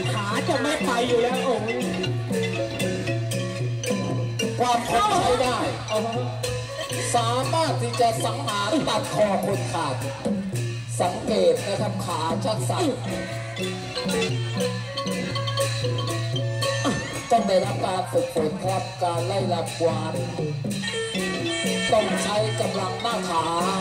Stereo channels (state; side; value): identical; both; correlation 1.00